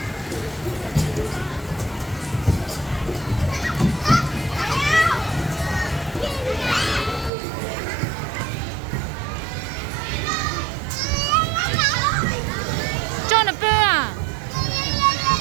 Cho nó bơ à?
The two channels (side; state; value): left; drops out; at 7.3 s